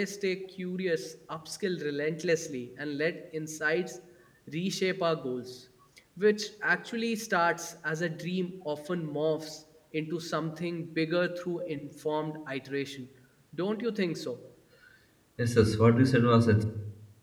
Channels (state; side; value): identical; both; correlation 1.00